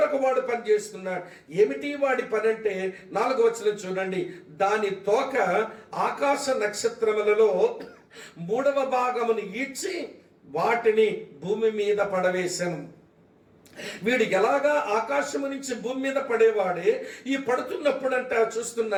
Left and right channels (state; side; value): identical; both; correlation 1.00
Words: వాడు పని చేస్తున్నాడు. ఏమిటి వాడి పని అంటే 4వ వచనం చూడండి, దాని తోక ఆకాశ నక్షత్రములలో 3వ భాగమును ఈడ్చి వాటిని భూమి మీద పడవేశాను. వీడు ఎలాగా ఆకాశము నుంచి భూమి మీద పడేవాడే, ఈ పడుతున్నప్పుడంట